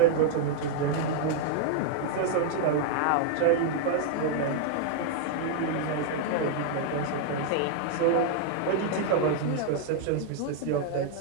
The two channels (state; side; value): different; both; correlation -0.01